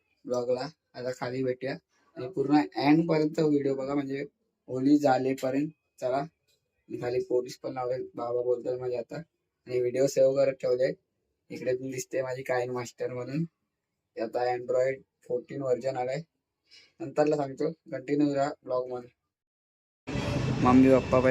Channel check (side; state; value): both; identical; correlation 1.00